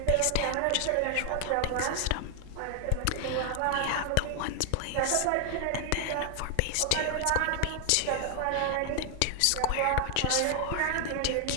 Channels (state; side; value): different; both; correlation 0.00